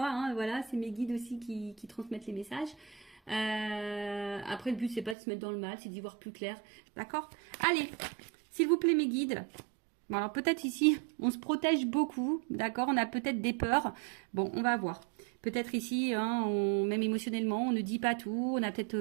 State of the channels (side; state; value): left; drops out; at 5.2 s